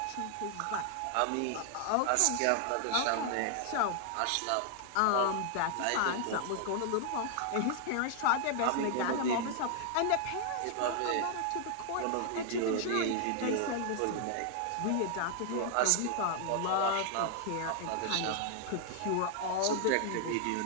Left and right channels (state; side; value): different; both; correlation 0.00